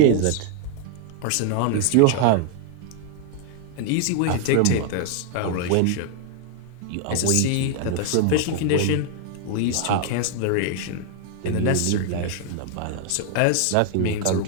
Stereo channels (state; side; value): different; both; correlation 0.00